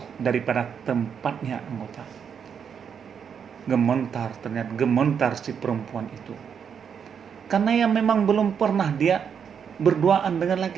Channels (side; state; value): left; quieter; 7.3 dB